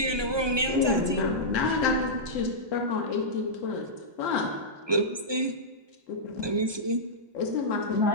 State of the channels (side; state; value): left; late; 1.2 ms